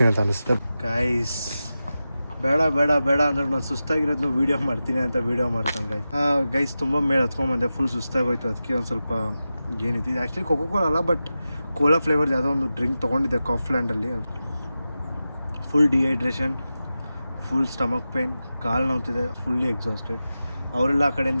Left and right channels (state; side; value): inverted; both; correlation -0.93